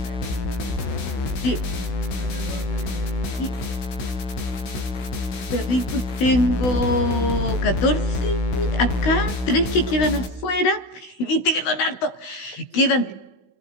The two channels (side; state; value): right; late; 16 ms